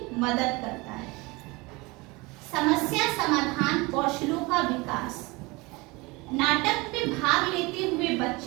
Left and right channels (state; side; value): quieter; left; 24.4 dB